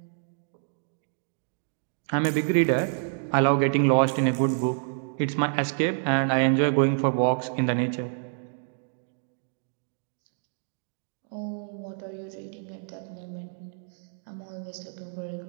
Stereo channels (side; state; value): left; silent; digital silence